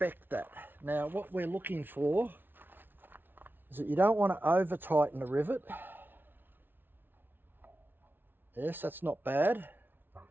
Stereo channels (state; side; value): late; left; 0.098 ms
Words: that. Now, what we're looking for is that you don't want to over tighten the rivet. Yes, that's not bad.